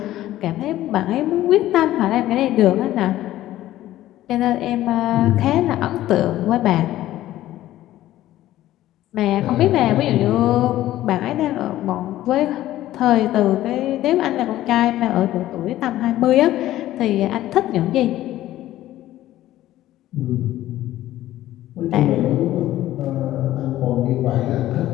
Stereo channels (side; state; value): right; quieter; 14.4 dB